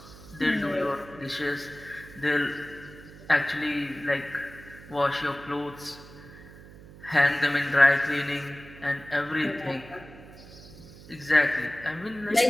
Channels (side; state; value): right; noise; hum, 18 dB below the sound